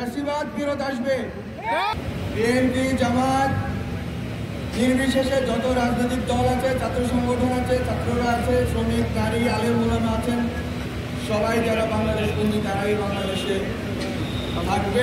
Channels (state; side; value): identical; both; correlation 1.00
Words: ফিরত আসবে। বিএনপি, জামাত নির্বিশেষে যত রাজনৈতিক দল আছে, ছাত্র সংগঠন আছে, ছাত্ররা আছে, শ্রমিক, নারী, আলেম ওলামা আছেন, সবাই যারা বাংলাদেশ বন্ধু তারাই বাংলাদেশে